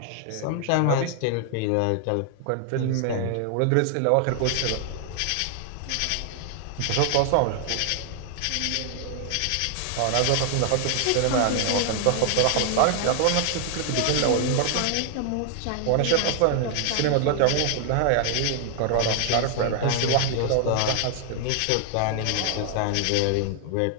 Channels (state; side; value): different; both; correlation 0.00